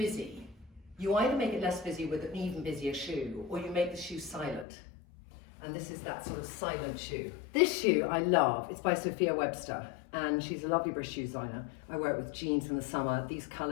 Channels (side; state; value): right; drops out; at 4.7 s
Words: you either make it less busy with an even busier shoe, or you make the shoe silent. And this is that sort of silent shoe. This shoe I love. It's by Sophia Webster, and she's a lovely British shoe designer. I wear it with jeans in the summer. These